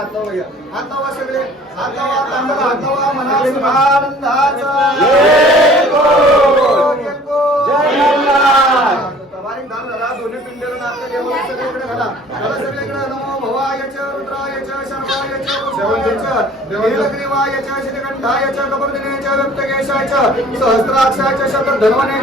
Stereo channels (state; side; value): normal; both; correlation 0.51